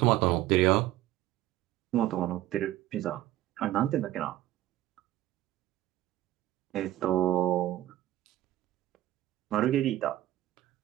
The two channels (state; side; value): quieter; left; 14.6 dB